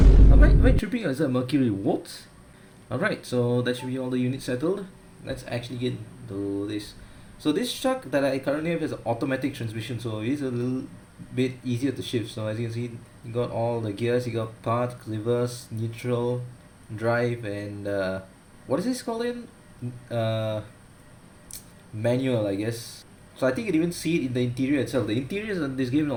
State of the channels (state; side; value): identical; both; correlation 1.00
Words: Am I tripping or is that mercury? What? Alright, so that should be all the units settled. Let's actually get to this. So this truck that I currently have has an automatic transmission, so it is a little bit easier to shift. So as you can see, you got all the gears. You got park, reverse, neutral, drive, and what is this called in? Manual, I guess. So I think you can even see it in the interior itself. The interiors in this game are